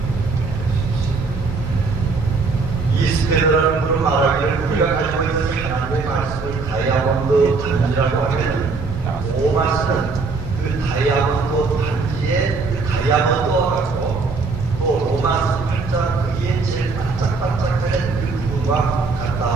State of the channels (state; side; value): quieter; left; 4.2 dB